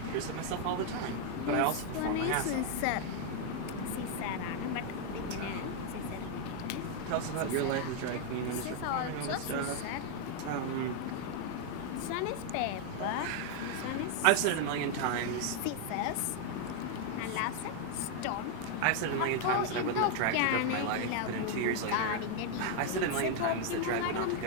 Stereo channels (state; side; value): different; both; correlation 0.00